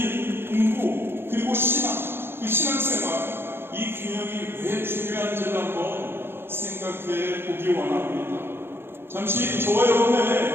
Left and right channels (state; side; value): late; left; 0.11 ms